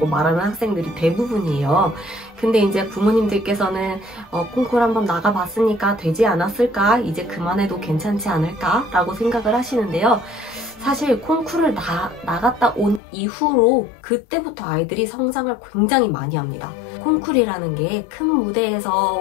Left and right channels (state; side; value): drops out; right; at 13.0 s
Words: 말하는 학생들이 대부분이에요. 근데 이제 부모님들께서는 콩쿠르 한번 나가봤으니까 되지 않았을까? 이제 그만해도 괜찮지 않을까? 라고 생각을 하시는데요. 사실 콩쿠르를 나갔다 온 이후로 그때부터 아이들이 성장을 굉장히 많이 합니다. 콩쿠르라는 게 큰